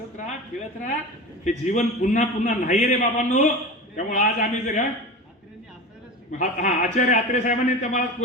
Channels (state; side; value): normal; both; correlation 0.30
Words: राहा, खेळत राहा. हे जीवन पुन्हा पुन्हा नाही रे बाबांनो. त्यामुळे आज आम्ही जर आचार्य आत्रे साहेबांनी तुम्हाला